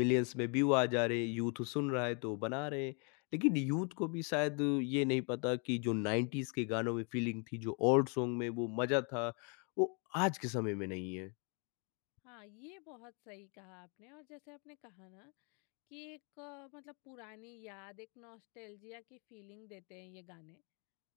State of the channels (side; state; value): right; quieter; 36.7 dB